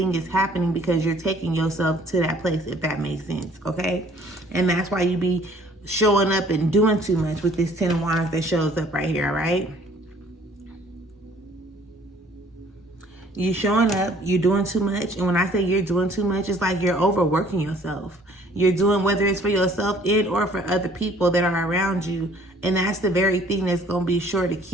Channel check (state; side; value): normal; both; correlation 0.57